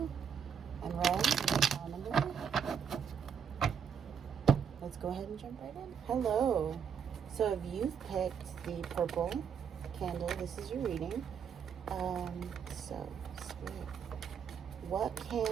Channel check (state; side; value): quieter; left; 7.3 dB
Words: and red will be pile number 3. Let's go ahead and jump right in. Hello. So if you've picked the purple candle, this is your reading. So, Spirit, what